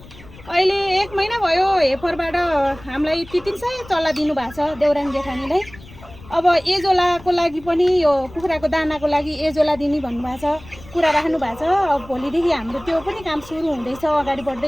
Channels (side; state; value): left; noise; rumble, 20 dB below the sound